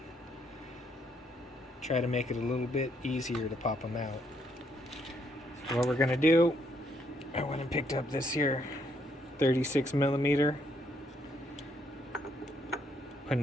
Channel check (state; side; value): normal; both; correlation 0.72